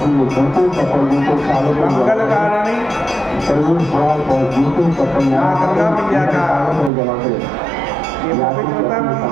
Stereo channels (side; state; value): left; drops out; at 6.9 s